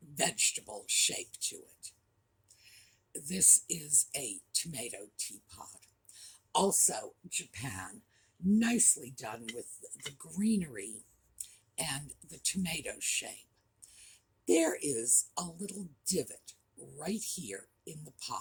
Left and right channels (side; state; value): both; identical; correlation 1.00